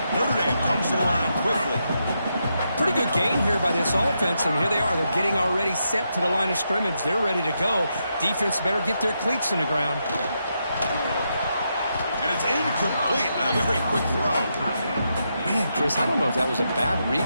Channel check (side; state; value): both; inverted; correlation -0.82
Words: Notre Dame comes to the line quickly. Pretty good gain here by this offense, and here they are. They're getting already set to the line of scrimmage. They're ready to go. Defense better get their cleats in the ground. And it's incomplete. A very quick throw. Man, Chris, I don't know if that was a bad